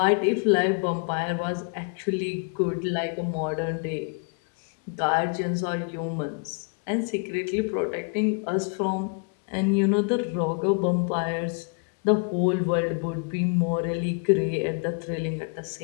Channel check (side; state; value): right; quieter; 37.7 dB